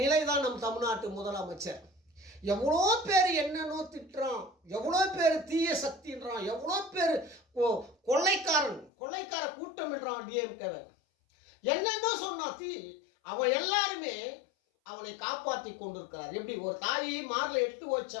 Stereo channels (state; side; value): drops out; right; at 8.9 s